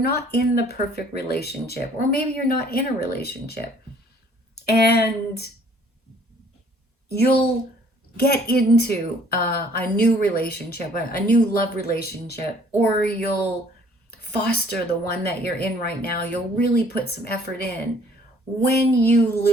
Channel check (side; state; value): both; normal; correlation 0.58